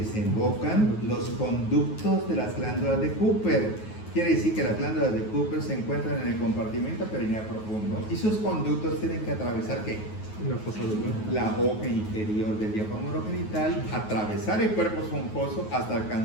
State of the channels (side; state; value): right; late; 9.4 ms